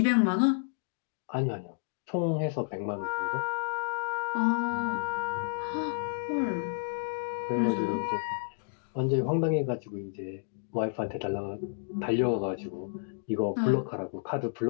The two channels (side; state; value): right; silent; digital silence